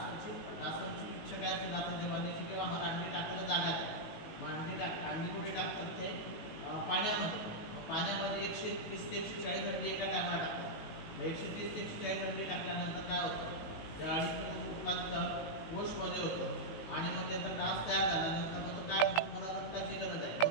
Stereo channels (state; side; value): late; right; 19 ms